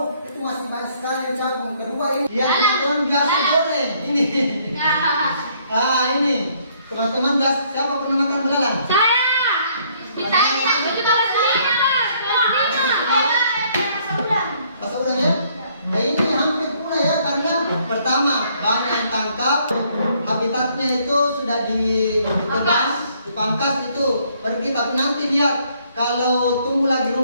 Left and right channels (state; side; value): inverted; both; correlation -0.65